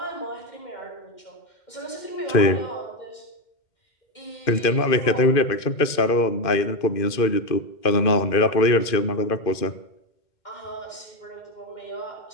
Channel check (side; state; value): right; late; 2.5 ms